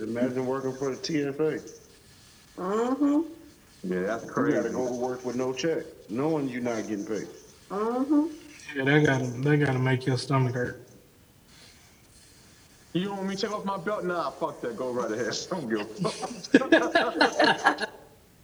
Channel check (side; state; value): both; identical; correlation 1.00